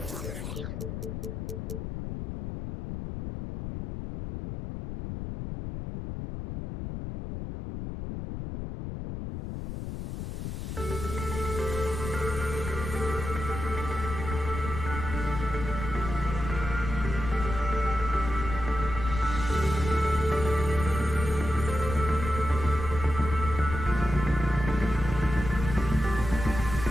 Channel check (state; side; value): noise; left; rumble, 6 dB below the sound